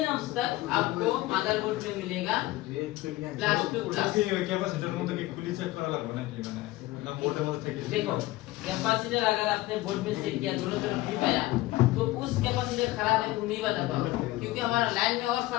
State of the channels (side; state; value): right; quieter; 18.1 dB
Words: ohms तक आपको मदरबोर्ड में मिलेगा प्लस टू प्लस কি ওই ক্যাপাসিটরের মধ্যে কি খুলি চেক করা লাগবে নাকি মানে না বোর্ডের মধ্যে থেকে देखो कैपेसिटर अगर आपने बोर्ड में सेट किया दोनों तरफ भी पाया तो उस कैपेसिटर खराब है तुम नहीं बता पाओगे क्योंकि हमारा लाइन में और